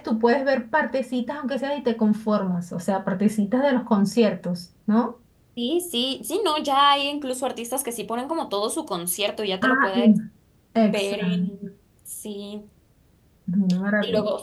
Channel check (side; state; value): both; identical; correlation 1.00